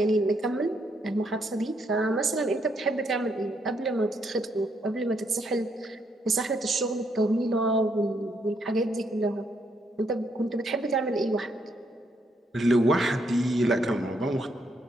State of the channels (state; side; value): normal; both; correlation 0.75